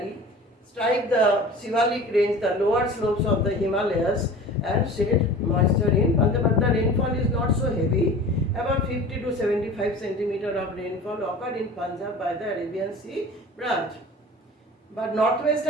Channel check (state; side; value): normal; both; correlation 0.39